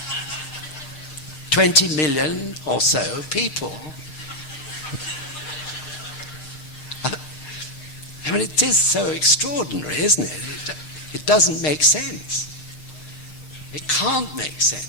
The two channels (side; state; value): right; late; 6.5 ms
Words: 20 million or so people. I mean, it is so extraordinary, isn't it? It doesn't make sense. It can't make